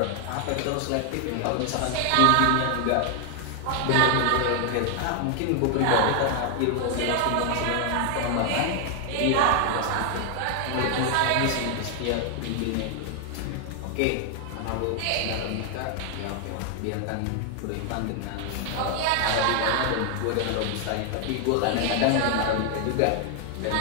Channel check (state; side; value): different; both; correlation 0.00